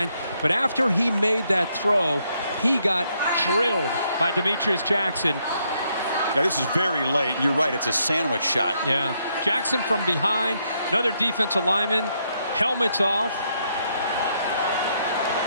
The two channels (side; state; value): both; inverted; correlation -0.75